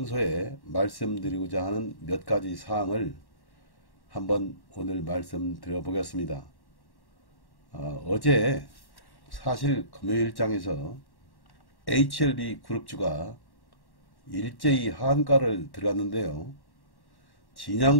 말씀드리고자 하는 몇 가지 사항을 한번 오늘 말씀드려 보겠습니다. 어제 사실 금요일장에서 HLB 그룹주가 일제히 하한가를 들어갔는데요.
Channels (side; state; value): right; late; 1.1 ms